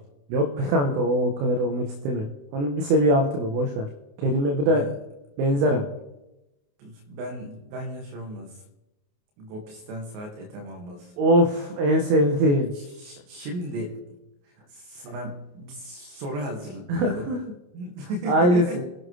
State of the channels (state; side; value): late; left; 28 ms